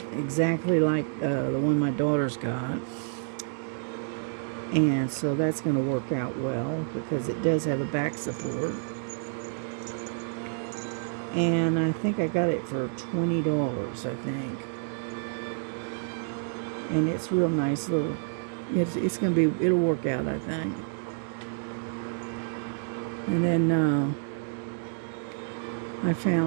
like the one my daughter's got, and so that's going to work out well because it does have a back support. And I think I got it for $20, I think. And it's real nice little. It's gonna be. It'll work out, I think. And then I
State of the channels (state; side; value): silent; left; digital silence